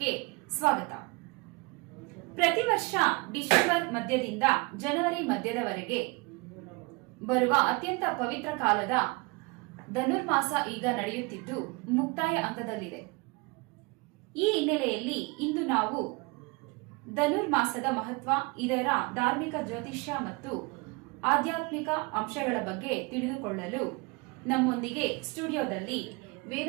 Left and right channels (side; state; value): left; quieter; 27.4 dB